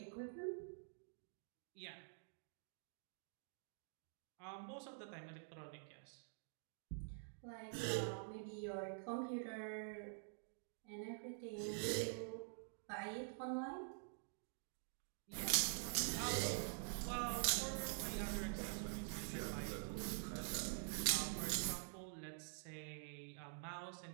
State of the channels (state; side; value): silent; left; digital silence